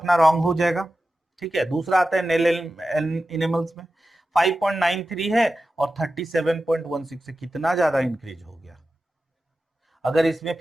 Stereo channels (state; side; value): normal; both; correlation 0.93